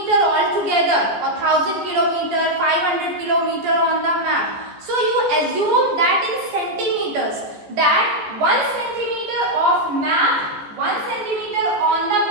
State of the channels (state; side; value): late; left; 14 ms